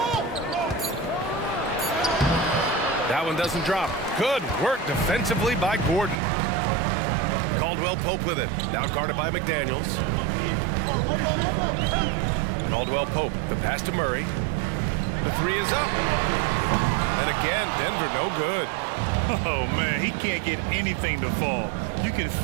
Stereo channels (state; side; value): drops out; left; at 6.2 s